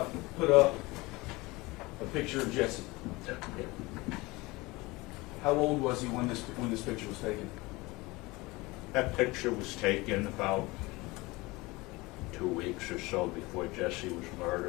put up a picture of Jesse. How old was he when this picture was taken? That picture was taken about 2 weeks or so before Jesse was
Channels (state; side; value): quieter; right; 22.6 dB